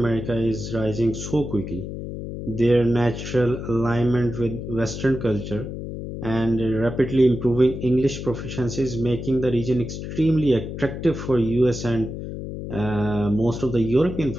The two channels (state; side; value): noise; left; hum, 7 dB below the sound